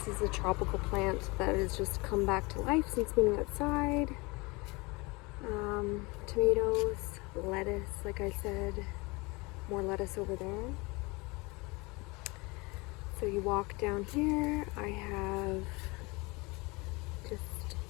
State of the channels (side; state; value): right; quieter; 25.7 dB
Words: is a tropical plant that has just come back to life since being outside. Tomatoes, lettuce, like I said, more lettuce over there. So you walk down here, I have just